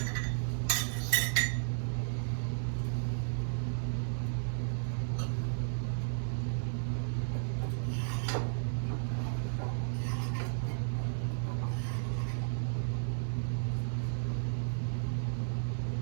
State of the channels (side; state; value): left; silent; 55 dB below the other